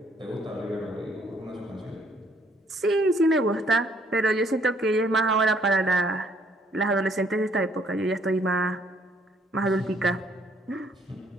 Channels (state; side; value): normal; both; correlation 0.65